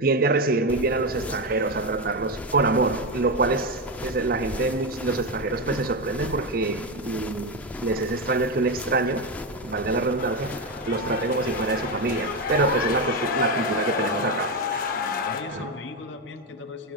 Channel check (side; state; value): both; normal; correlation 0.12